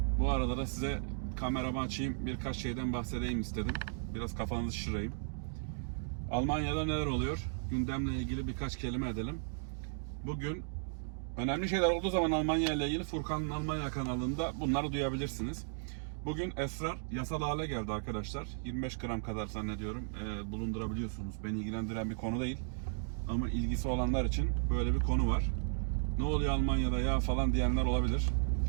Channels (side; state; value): left; silent; digital silence